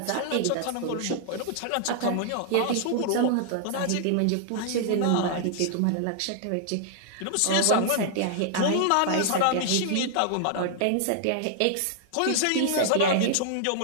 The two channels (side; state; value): both; different; correlation -0.01